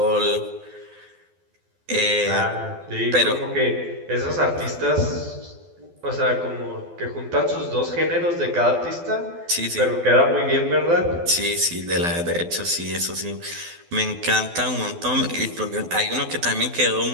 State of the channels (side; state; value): left; late; 12 ms